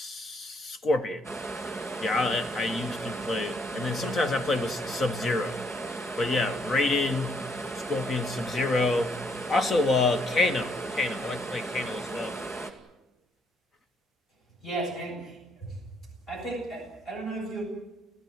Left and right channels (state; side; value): normal; both; correlation 0.70